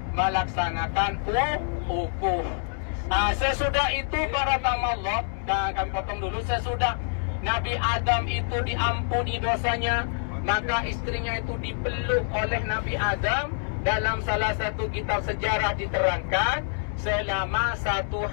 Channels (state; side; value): silent; right; 61 dB below the other